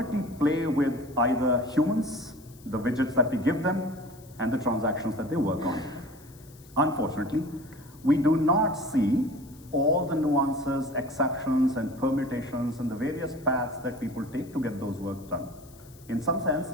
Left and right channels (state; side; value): noise; left; hiss, 25 dB below the sound